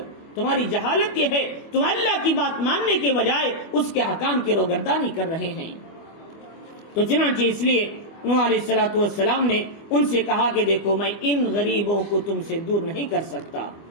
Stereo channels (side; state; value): right; late; 25 ms